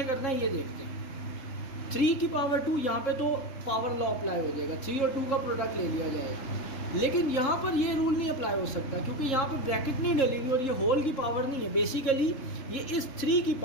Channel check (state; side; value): late; right; 3.7 ms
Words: करना है ये देखते हैं। 3 की पावर 2, यहाँ पे तो पावर लॉ अप्लाई हो जाएगा, 3 और 2 का प्रोडक्ट ले लिया जाएगा, लेकिन यहाँ पर ये रूल नहीं अप्लाई हो सकता क्योंकि यहाँ पे ब्रैकेट नहीं डलेगी और ये होल की पावर नहीं है। बेसिकली ये इस 3 की